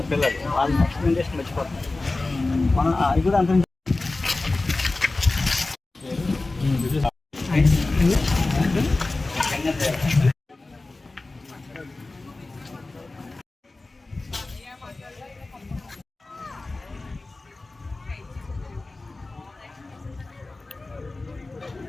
పిల్లలు, వాళ్ళ నెక్స్ట్ జనరేషన్ మర్చిపోతున్నారు. మనం అది కూడా అంత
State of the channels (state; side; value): quieter; right; 3.2 dB